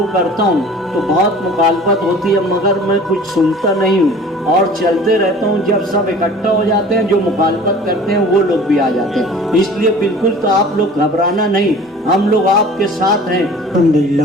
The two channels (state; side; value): normal; both; correlation 0.45